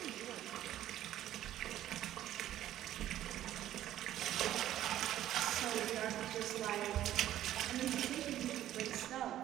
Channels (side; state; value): left; quieter; 12.7 dB